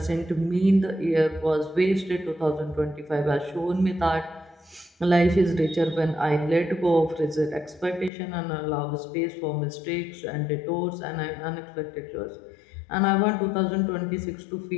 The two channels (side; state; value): right; drops out; at 8.1 s